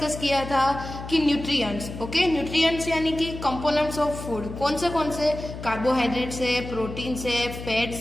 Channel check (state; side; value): noise; left; hum, 10 dB below the sound